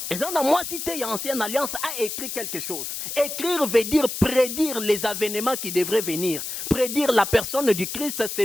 Et dans la moitié de l'ancienne alliance a écrit quelque chose. Écrire veut dire prédire les événements qui devraient venir. Prédire la personne du Christ,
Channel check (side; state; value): left; noise; hiss, 6 dB below the sound